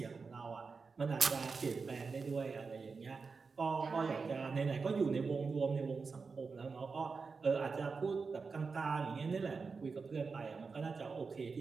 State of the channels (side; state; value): left; quieter; 4.8 dB